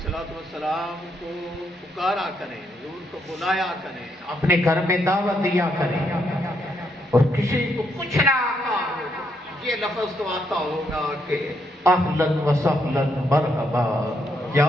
والسلام کو پکارا کریں، حضور کو بلایا کریں، اپنے گھر میں دعوت دیا کریں، اور کسی کو کچھ نہ آتا ہو یہ لفظ تو آتا ہوگا کہ اہلاً و سہلاً مرحبا یا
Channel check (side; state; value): both; normal; correlation 0.76